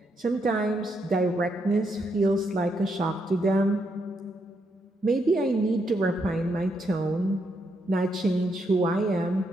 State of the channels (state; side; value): normal; both; correlation 0.78